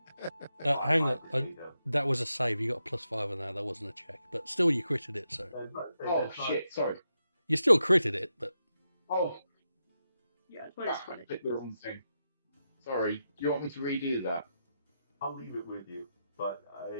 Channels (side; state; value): both; inverted; correlation -0.86